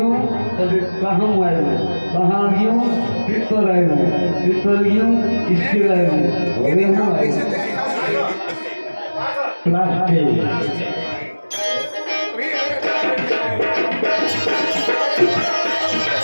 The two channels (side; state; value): both; inverted; correlation -1.00